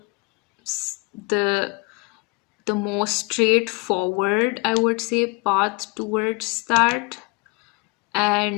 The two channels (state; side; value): quieter; right; 28.9 dB